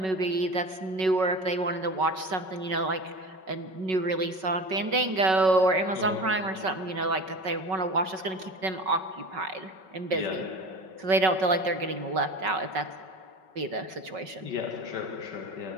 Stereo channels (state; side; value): late; left; 5.3 ms